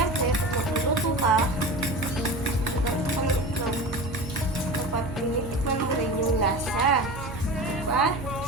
pag magluluto ka, dapat tinitikman mo rin yung lasa. Diba?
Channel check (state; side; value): noise; right; hum, 11 dB below the sound